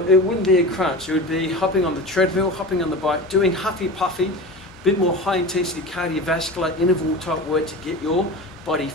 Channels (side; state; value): both; normal; correlation 0.31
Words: it wouldn't be a crunch. It would be hopping on the treadmill, hopping on the bike, doing huffy puffy, bit more high intensity cardiovascular interval type work to get your body